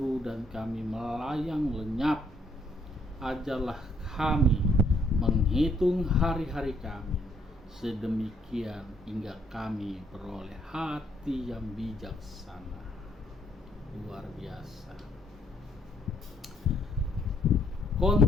dan kami melayang lenyap. Ajarlah kami menghitung hari-hari kami, sedemikian hingga kami beroleh hati yang bijaksana. Luar biasa.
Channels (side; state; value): both; normal; correlation 0.68